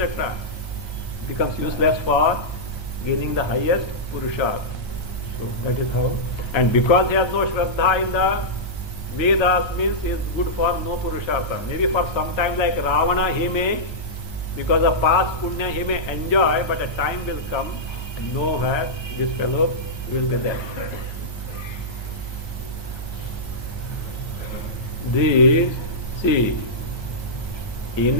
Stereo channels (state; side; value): late; right; 1.3 ms